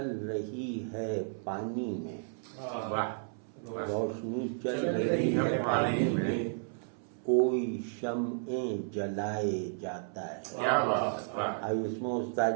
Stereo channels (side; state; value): left; silent; 56 dB below the other